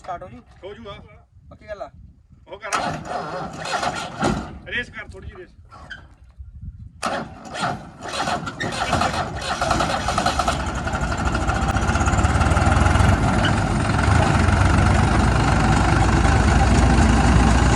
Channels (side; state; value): both; identical; correlation 1.00